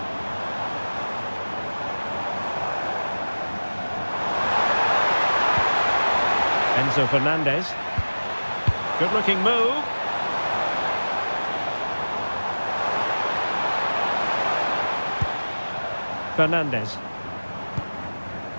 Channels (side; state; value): both; inverted; correlation -1.00